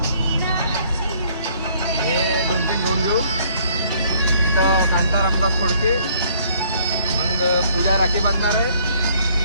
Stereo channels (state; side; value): inverted; both; correlation -0.62